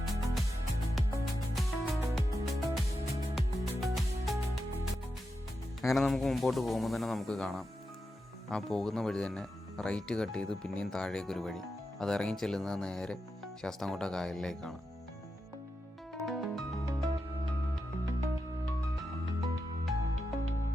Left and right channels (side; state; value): both; normal; correlation 0.88